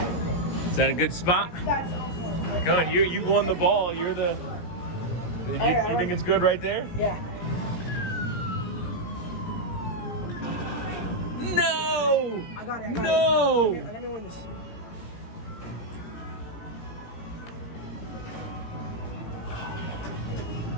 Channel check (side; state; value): right; late; 17 ms